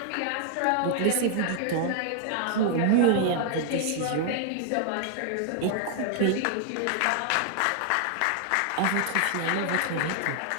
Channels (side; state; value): both; different; correlation 0.00